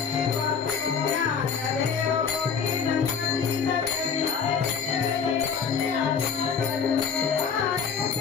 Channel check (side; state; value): right; quieter; 6.3 dB